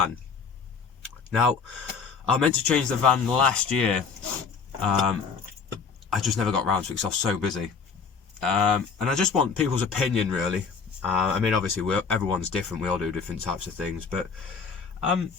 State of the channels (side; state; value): right; quieter; 5.4 dB